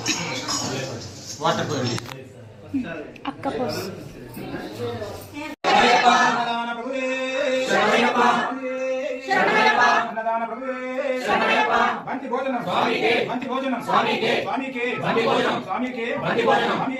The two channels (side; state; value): both; identical; correlation 1.00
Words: అక్క పోసి బంతి భోజనం స్వామికే బంతి భోజనం స్వామికే స్వామికే బంతి భోజనం స్వామికే బంతి భోజనం